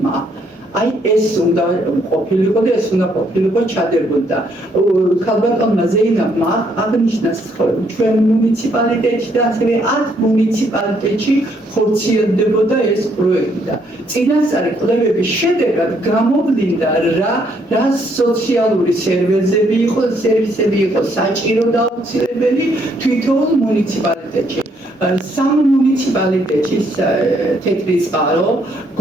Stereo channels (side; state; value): both; normal; correlation 0.70